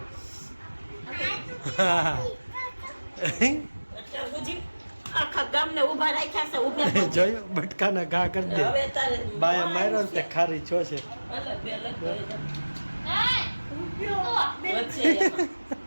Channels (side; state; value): both; inverted; correlation -1.00